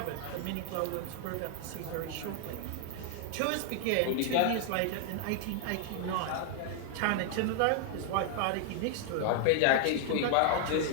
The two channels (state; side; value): different; both; correlation 0.00